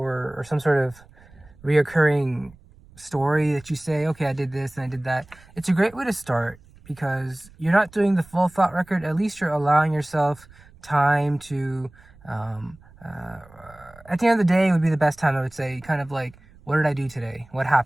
some sort of reoccurring story that you say, okay, I did this and I did that. It's a great way to start because you're not doing the full thought record. At least you're allowing yourself time to, at the end of the day, it would be the best time, I would say, kind of like, what did I do today? What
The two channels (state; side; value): noise; right; rumble, 25 dB below the sound